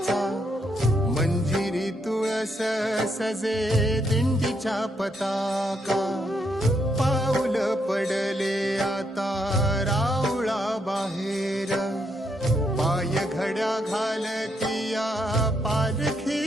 मंजिरी तुळस सजे दिंडीच्या पताका पाऊल पडले आता राऊळा बाहेर पाय घड्या घालतिया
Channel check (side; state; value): both; normal; correlation 0.77